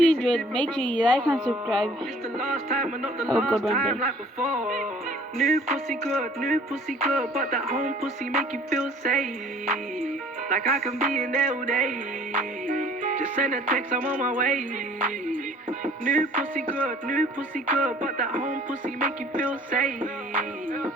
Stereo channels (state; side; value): normal; both; correlation 0.53